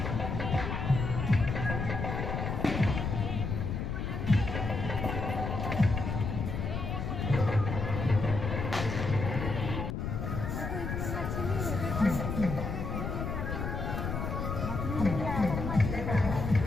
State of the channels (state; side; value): noise; left; rumble, 3 dB below the sound